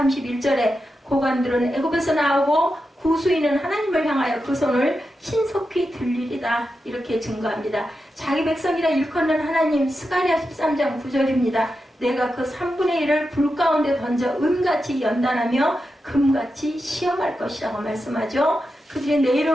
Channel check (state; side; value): normal; both; correlation 0.89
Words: 고관들은 애굽에서 나오고 구수인은 하나님을 향하여 그 손을 신속히 들리리다. 이렇게 증거합니다. 자기 백성이라 일컫는 하나님. 스가랴 13장 9절입니다. 내가 그 3분의 1을 불 가운데 던져 은같이 연단하며 금같이 시험할 것이라고 말씀하죠. 그들이 내